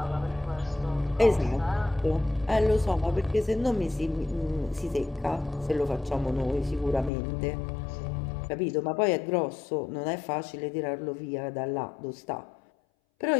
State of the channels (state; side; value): drops out; right; at 7.1 s